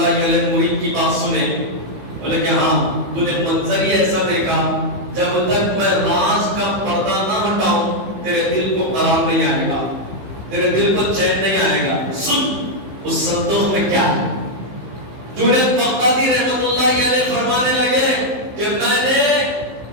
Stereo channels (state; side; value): late; left; 15 ms